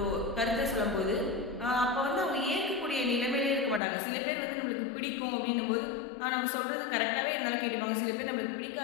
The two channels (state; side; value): drops out; right; at 3.8 s